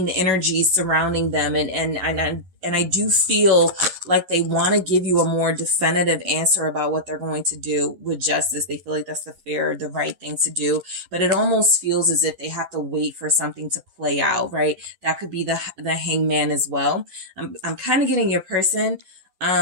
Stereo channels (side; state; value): left; late; 10 ms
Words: energy surrounding them. And I do feel like they want to give you a more definitive answer about what they're going to do with justice. They feel like that's the right thing to do, but it almost feels as if they have to wait for something to play out, right? That could be the Hangman as well. I'm kind of getting your person,